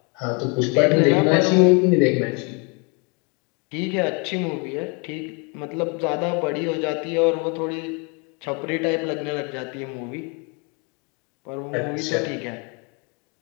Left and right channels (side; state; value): right; quieter; 31.6 dB